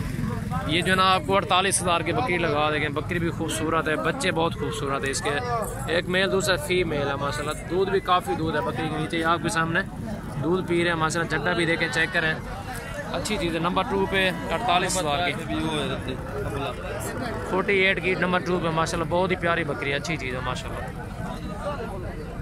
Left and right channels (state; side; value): identical; both; correlation 1.00